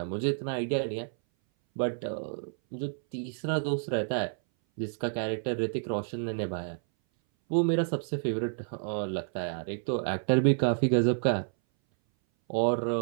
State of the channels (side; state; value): left; silent; 58 dB below the other